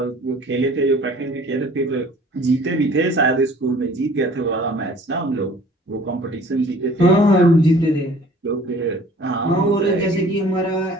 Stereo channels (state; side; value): normal; both; correlation 0.51